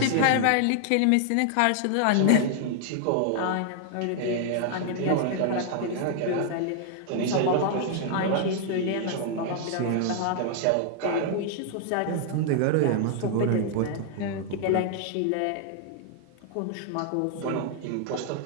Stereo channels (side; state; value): both; different; correlation 0.00